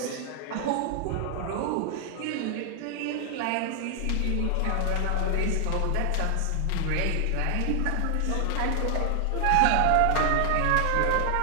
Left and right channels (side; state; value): both; different; correlation 0.00